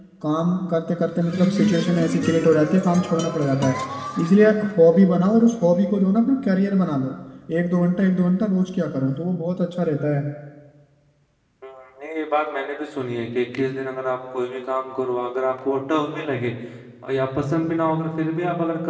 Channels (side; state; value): both; identical; correlation 1.00